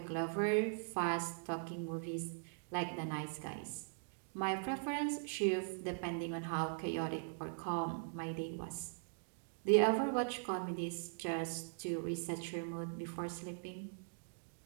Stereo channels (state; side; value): silent; left; digital silence